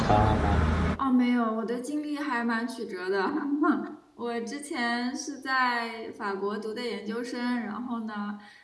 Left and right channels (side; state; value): both; identical; correlation 1.00